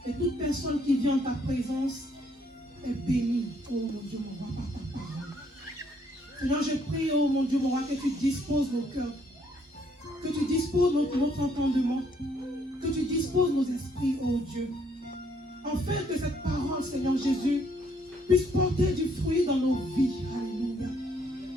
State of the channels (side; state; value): both; normal; correlation 0.68